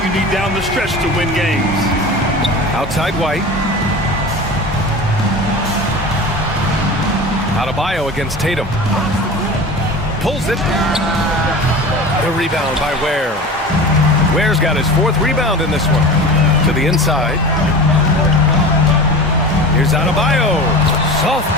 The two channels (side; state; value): both; normal; correlation 0.34